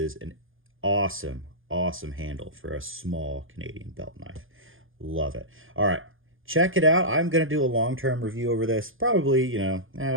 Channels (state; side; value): late; left; 0.59 ms